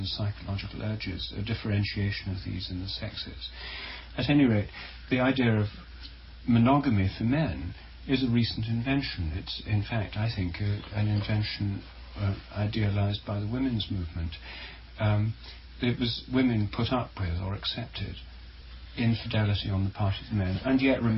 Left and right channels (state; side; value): identical; both; correlation 1.00